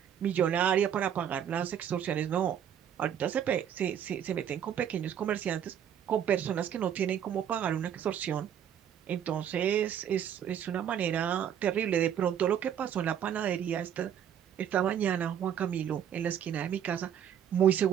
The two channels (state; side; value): quieter; left; 9.3 dB